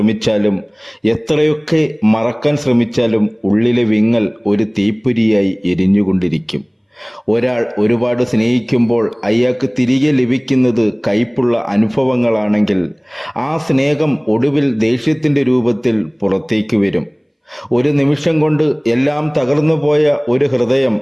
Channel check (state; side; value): identical; both; correlation 1.00